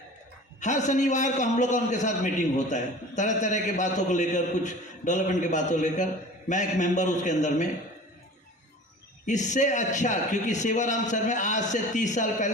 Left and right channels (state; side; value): normal; both; correlation 0.41